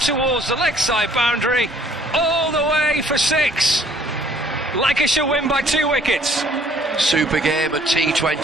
the leg side boundary, all the way for 6. Lancashire win by 2 wickets. Super game of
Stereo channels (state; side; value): normal; both; correlation 0.59